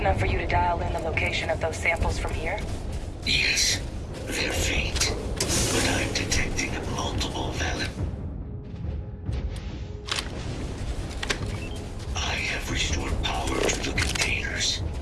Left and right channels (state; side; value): identical; both; correlation 1.00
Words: for you to dial in the location of those samples from here? Yes, they're faint, but I'm detecting multiple valid. I have restored power to the containers.